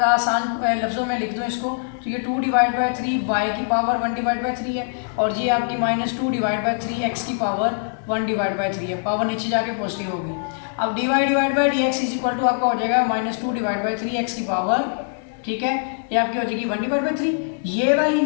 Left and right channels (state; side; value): silent; right; digital silence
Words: आसान लफ्ज़ों में लिख दूँ इसको, तो ये 2 डिवाइड बाई 3 y की पावर 1 डिवाइड बाई 3 है और ये आपकी -2 डिवाइड बाई 3 x की पावर 1 डिवाइड बाई 3 है, पावर नीचे जाके पॉजिटिव होगी। अब dy divide by d x is equal to आपका हो जाएगा -2 डिवाइड बाई 3 x की पावर, ठीक है, ये आपकी हो जाएगी 1 डिवाइड बाई 3। ये वाली